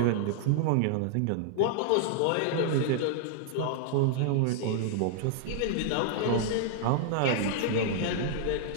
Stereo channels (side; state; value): both; different; correlation -0.01